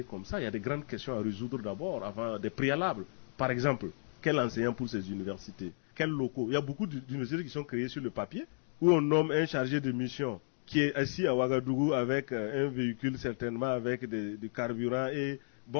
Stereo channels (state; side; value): silent; right; digital silence